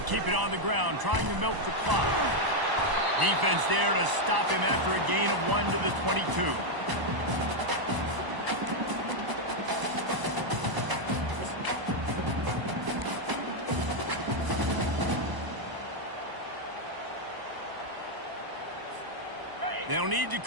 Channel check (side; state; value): left; late; 1.0 ms